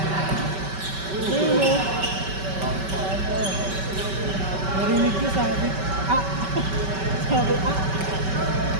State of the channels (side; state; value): left; late; 5.2 ms